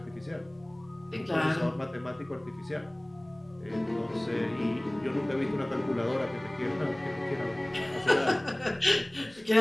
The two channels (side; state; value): left; noise; rumble, 30 dB below the sound